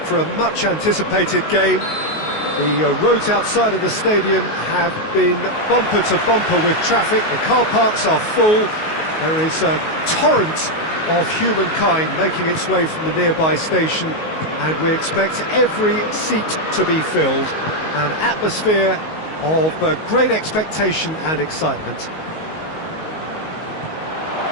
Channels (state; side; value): late; right; 19 ms